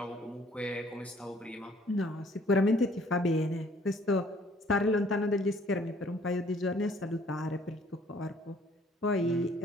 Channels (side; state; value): both; normal; correlation 0.59